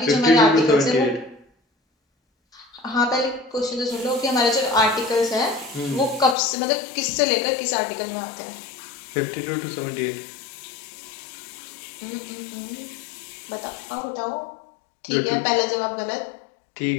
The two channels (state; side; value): drops out; right; at 6.4 s